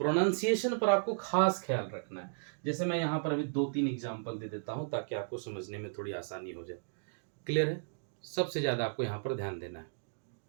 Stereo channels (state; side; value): silent; left; digital silence